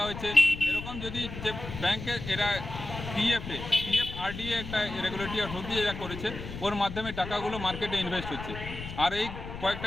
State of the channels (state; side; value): noise; left; rumble, 9 dB below the sound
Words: হয়েছে। এরকম যদি যে ব্যাংকে এরা পিএফ আরডিএ একটা রেগুলেটরি অথরিটি যেটা করেছে, ওর মাধ্যমে টাকাগুলো মার্কেটে ইনভেস্ট হচ্ছে। আর এই